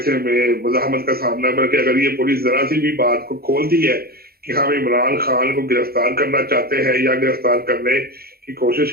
हमें मजामत का सामना, बल्कि अगर ये पुलिस जरा सी भी बात को खोलती है कि हम इमरान खान को गिरफ्तार करना चाहते हैं या गिरफ्तार करने की कोशिश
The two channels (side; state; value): left; late; 0.44 ms